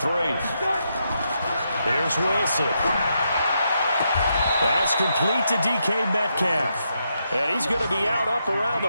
Here's Wilson. That's complete to DK Metcalf. And he's going to be out up around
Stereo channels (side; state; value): both; inverted; correlation -0.81